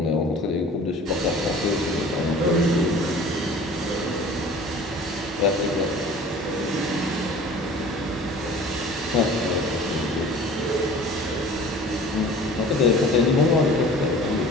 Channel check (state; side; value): normal; both; correlation 0.44